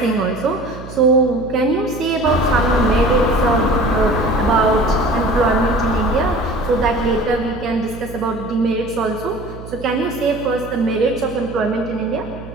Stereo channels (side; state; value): right; noise; hum, 14 dB below the sound